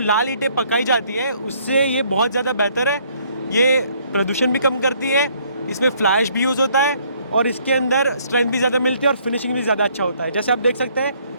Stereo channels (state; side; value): inverted; both; correlation -0.65